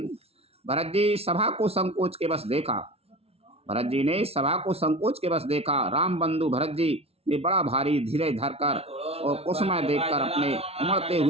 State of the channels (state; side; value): late; left; 0.30 ms